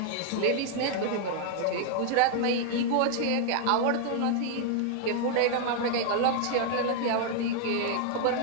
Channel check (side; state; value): both; different; correlation 0.00